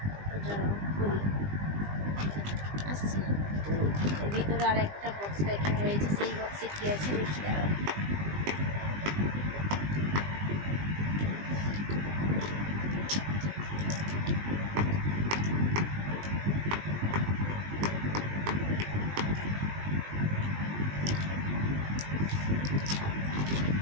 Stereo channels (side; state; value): left; late; 20 ms